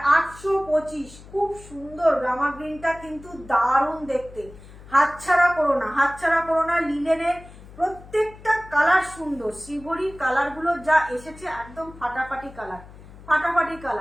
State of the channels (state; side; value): noise; left; hum, 19 dB below the sound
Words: 825, খুব সুন্দর রামা গ্রিনটা কিন্তু দারুণ দেখতে, হাতছাড়া করো না। লিনেনের প্রত্যেকটা কালার সুন্দর, শ্রীভরির কালার গুলো যা এসেছে একদম ফাটাফাটি